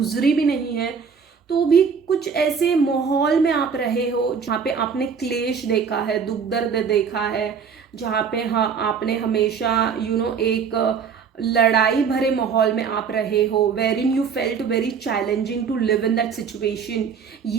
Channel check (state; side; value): quieter; left; 6.3 dB